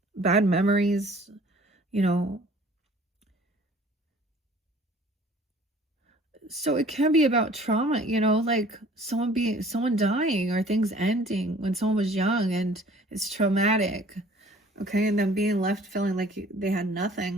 bad memories, you know. So it can be about trauma, you know, like someone dying, or things ending when someone was young and it's traumatic. Okay, and then being left feeling like they had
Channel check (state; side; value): normal; both; correlation 0.52